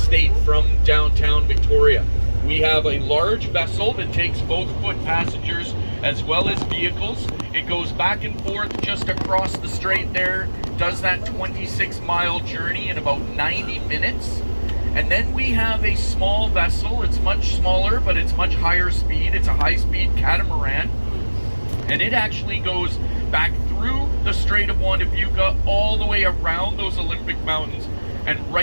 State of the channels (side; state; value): both; inverted; correlation -1.00